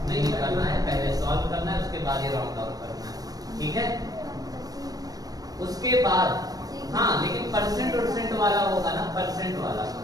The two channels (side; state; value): left; late; 0.18 ms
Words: नहीं करना है, पहले सॉल्व करना है, उसके बाद ये राउंड ऑफ करना है, ठीक है। उसके बाद हाँ, लेकिन परसेंट वाला होगा ना, परसेंट वाला